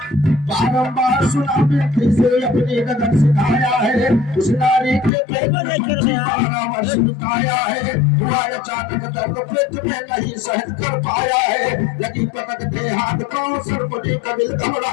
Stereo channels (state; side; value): drops out; right; at 5.1 s